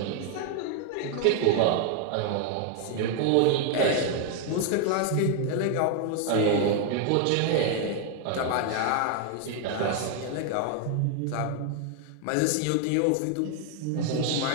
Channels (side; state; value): both; different; correlation 0.00